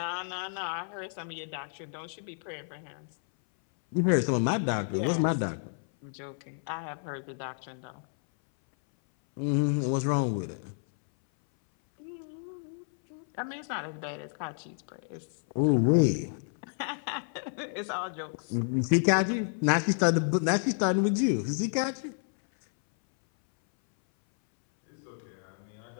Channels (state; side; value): silent; right; 58 dB below the other